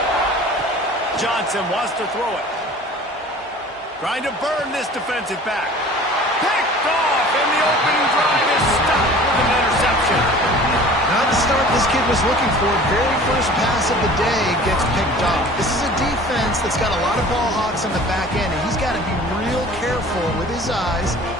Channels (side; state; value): both; normal; correlation 0.45